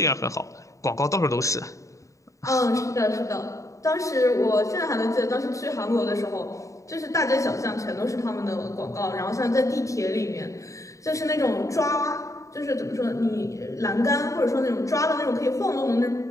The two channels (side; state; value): right; late; 0.16 ms